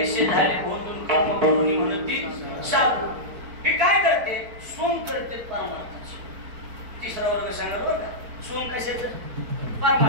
झाले भोंदून कर्म करून म्हणती साधू. ही काय करते? सोम करते परमार्थाचं. तिसरा वर्ग सांगा बरं का. सोम कशाचं?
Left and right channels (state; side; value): late; left; 4.5 ms